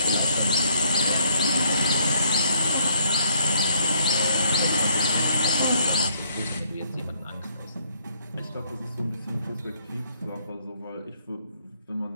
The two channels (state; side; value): inverted; both; correlation -0.68